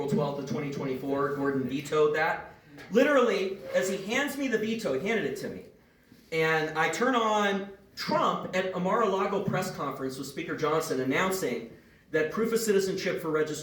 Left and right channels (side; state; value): both; identical; correlation 1.00